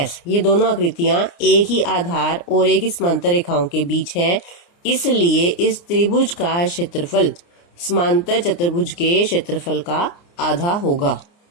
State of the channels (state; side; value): late; right; 29 ms